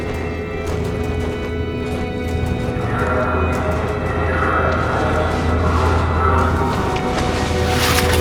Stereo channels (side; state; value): both; identical; correlation 1.00